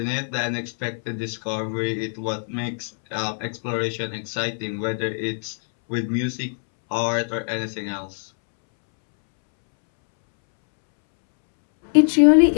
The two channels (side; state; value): right; silent; 63 dB below the other